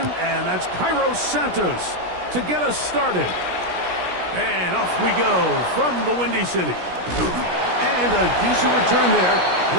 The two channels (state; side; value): late; left; 17 ms